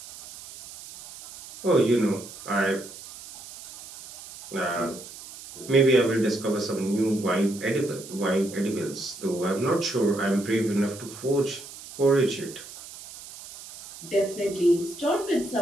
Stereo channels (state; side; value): noise; right; hiss, 15 dB below the sound